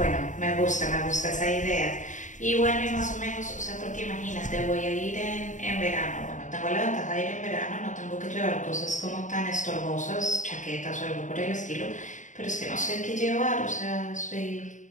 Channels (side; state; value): right; late; 0.36 ms